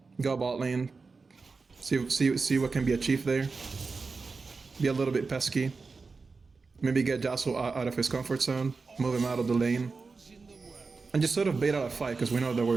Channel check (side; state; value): left; quieter; 4.4 dB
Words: go bot lane, see what can be achieved there, be a little bit pesky, maybe get Yasuo out of his comfort zone, move him out of the lane, and just sort of bait out a fight because we know that